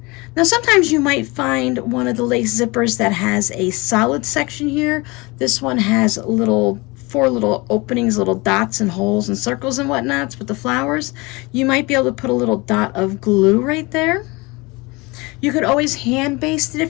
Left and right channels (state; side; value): quieter; right; 24.8 dB